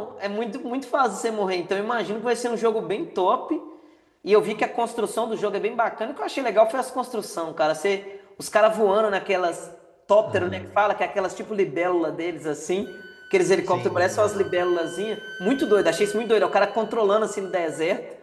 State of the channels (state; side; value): identical; both; correlation 1.00